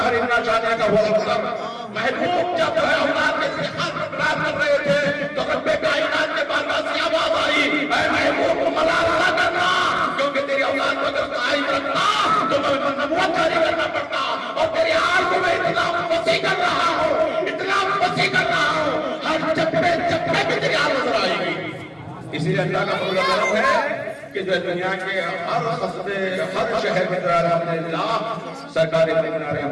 إِنَّ شَانِئَكَ هُوَ الْأَبْتَرُ. محبوب جب جو ہے اولاد کے اتحاد پر پرار کر رہے تھے تو رب کائنات کے پاس سے آواز آئی، اے محبوب کو ملال نہ کرنا، کیونکہ تیری اولاد کو اگر قائم رکھنا تو میں نبوت جاری کرنا پڑتا، اور تیری آل کو میں اتنا وسیع کر رہا ہوں، اتنا وسیع کر رہا ہوں، ہر چپے چپے پہ تیری آل نظر آئے گی. اسی لیے اللہ کا فضل و کرم ہے کہ جو دنیا کے ہر قصبے، ہر شہر میں الحمدللہ سرکار مدینہ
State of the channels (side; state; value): both; identical; correlation 1.00